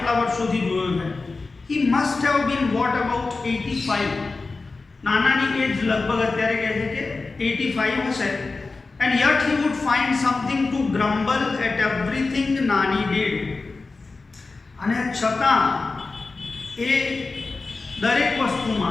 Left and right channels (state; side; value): quieter; right; 3.8 dB